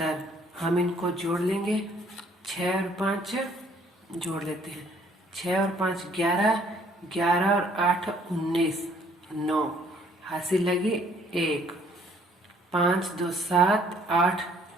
हम इनको जोड़ लेंगे, 6 और 5 जोड़ लेते हैं, 6 और 5 11, 11 और 8 19, 9, हासिल लगी 1, 5 2 7 8,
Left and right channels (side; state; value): both; normal; correlation 0.61